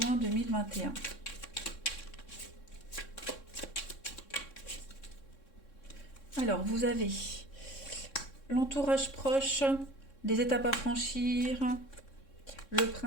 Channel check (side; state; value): right; late; 3.6 ms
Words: 2021. Alors, vous avez l'entourage proche, des étapes à franchir, le